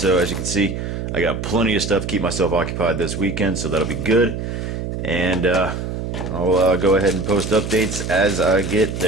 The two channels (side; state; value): right; noise; hum, 5 dB below the sound